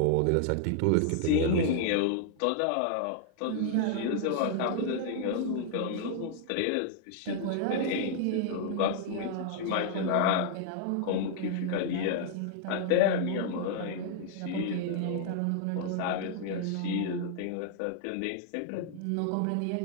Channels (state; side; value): different; both; correlation -0.01